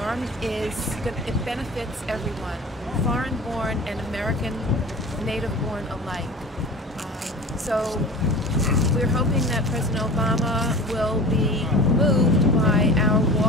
it benefits everyone, foreign-born and American native-born alike. So we're hoping that President Obama will be moved by our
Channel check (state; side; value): normal; both; correlation 0.37